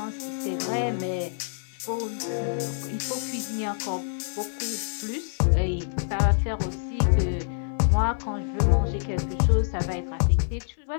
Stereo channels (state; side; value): silent; right; 56 dB below the other